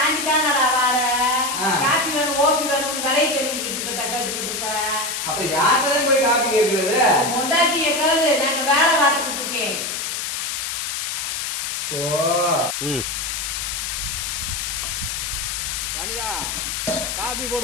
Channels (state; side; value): noise; left; hiss, 3 dB below the sound